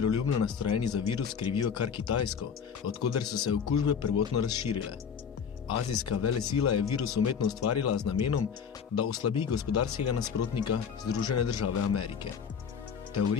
nastrojeni za virus krivijo kar Kitajsko, odkoder so se okužbe prvotno razširile. Azijska velesila je virus umetno ustvarila z namenom, da oslabi gospodarskega nasprotnika Združene države Amerike.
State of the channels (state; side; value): quieter; right; 6.9 dB